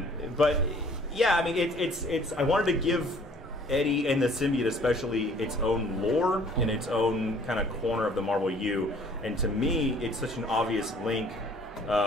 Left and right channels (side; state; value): both; normal; correlation 0.55